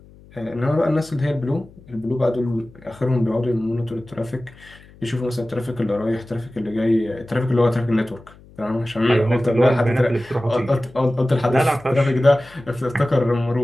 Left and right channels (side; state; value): left; noise; hum, 24 dB below the sound